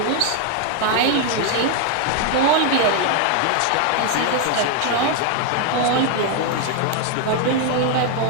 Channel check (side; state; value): both; different; correlation 0.01